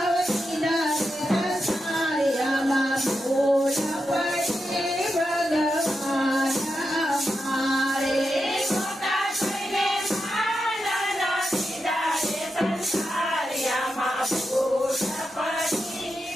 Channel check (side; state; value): both; normal; correlation 0.87